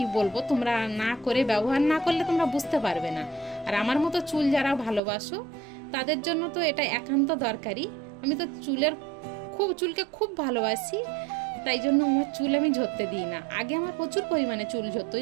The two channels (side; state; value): left; drops out; at 5.0 s